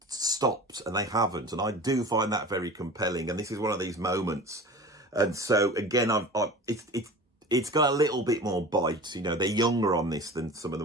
stopped, and they haven't. And I do find that very compelling. And this is one of these moments. And so again, it's got a little bit more bite. You know, they're younger on this than some of the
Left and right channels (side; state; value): both; normal; correlation 0.37